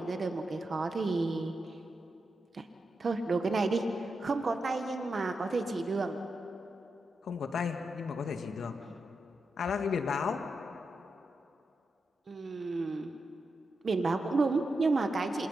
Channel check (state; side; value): normal; both; correlation 0.87